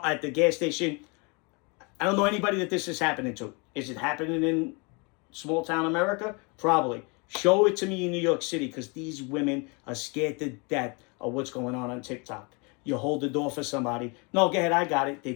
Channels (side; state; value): right; quieter; 31.2 dB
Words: gas station. I don't know anybody that this is happening to. Is it happening in small town America? Probably. Show it to me in New York City, because these women are scared to death of what's going on TikTok. You hold the door for somebody. No, go ahead, I got it. They